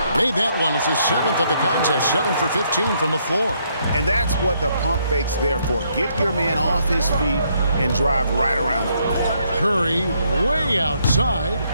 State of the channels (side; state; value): both; inverted; correlation -0.72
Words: Made that one. It's his 7th of the contest, 7 for 15 from the floor. And that's what the pump fake's there for. Get your man off his feet and drive right around him. Curry way outside.